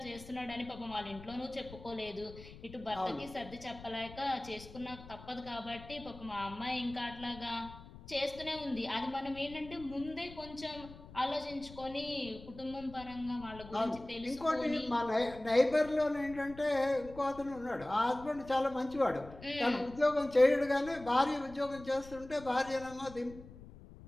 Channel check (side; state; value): left; noise; rumble, 17 dB below the sound